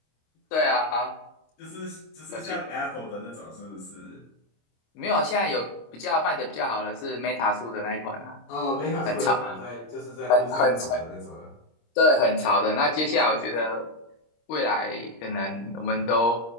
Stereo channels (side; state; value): right; late; 26 ms